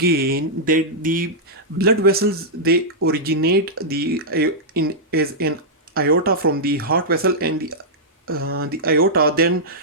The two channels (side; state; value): both; normal; correlation -0.09